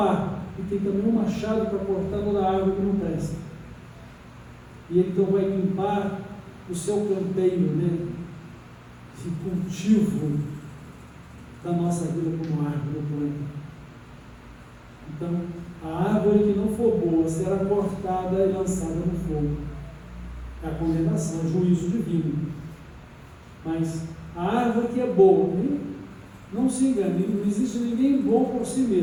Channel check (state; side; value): identical; both; correlation 1.00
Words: e tem também um machado para cortar toda a árvore que não presta. E ele então vai limpar o seu canteiro, né, de cultivo da nossa vida como árvore planta. Então, a árvore que não for boa será cortada e lançada no fogo. É a condenação, o juízo divino. Mas a árvore que é boa, não se engane, não existe ninguém bom por si